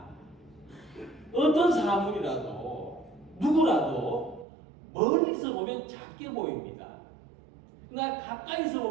어떤 사물이라도 누구라도 멀리서 보면 작게 보입니다. 그러나 가까이서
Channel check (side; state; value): left; drops out; at 4.5 s